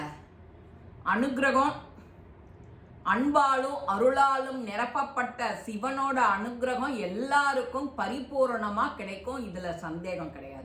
அனுகிரகம், அன்பாலும் அருளாலும் நிரப்பப்பட்ட சிவனோட அனுகிரகம் எல்லாருக்கும் பரிபூரணமா கிடைக்கும். இதுல சந்தேகம்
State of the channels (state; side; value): identical; both; correlation 1.00